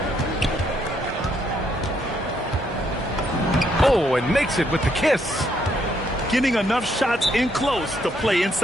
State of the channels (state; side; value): normal; both; correlation 0.73